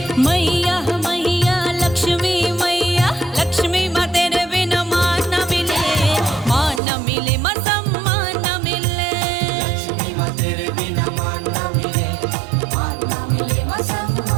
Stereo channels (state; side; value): drops out; left; at 6.8 s